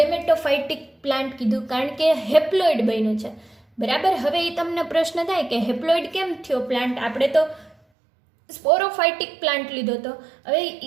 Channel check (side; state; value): left; drops out; at 7.8 s